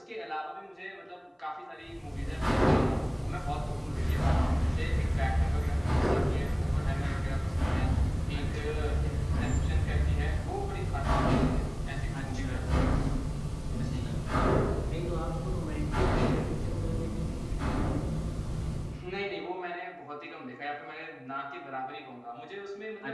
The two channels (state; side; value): identical; both; correlation 1.00